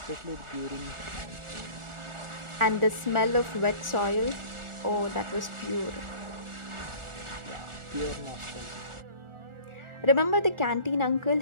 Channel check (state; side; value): late; left; 1.4 ms